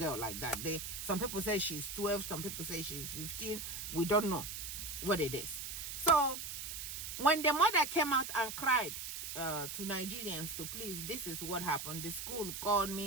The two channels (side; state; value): right; noise; hiss, 6 dB below the sound